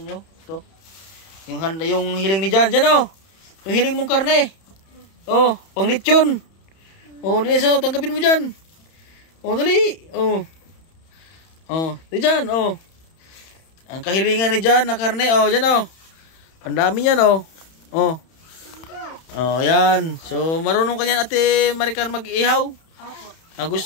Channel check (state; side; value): late; right; 31 ms